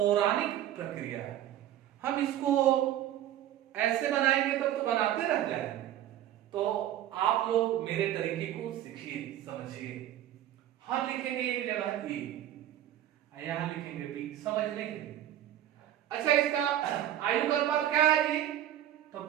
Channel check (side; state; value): left; quieter; 12.1 dB